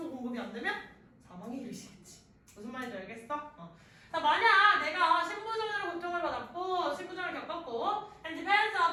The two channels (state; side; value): identical; both; correlation 1.00